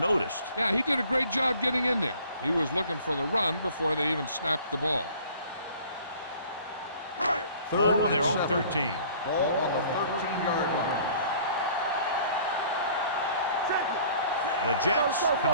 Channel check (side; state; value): both; inverted; correlation -0.52